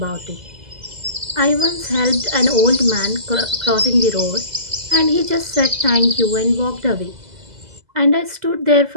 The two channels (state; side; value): late; left; 2.0 ms